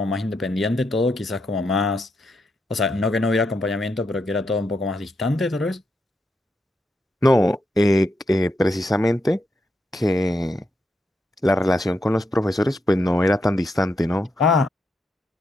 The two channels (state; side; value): normal; both; correlation 0.82